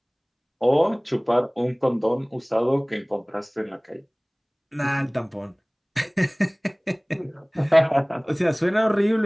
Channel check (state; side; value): identical; both; correlation 1.00